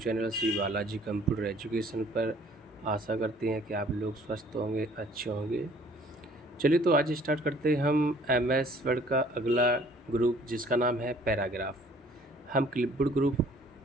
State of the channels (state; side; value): normal; both; correlation 0.56